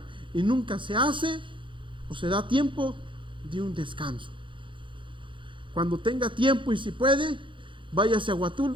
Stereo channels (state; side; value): late; left; 0.24 ms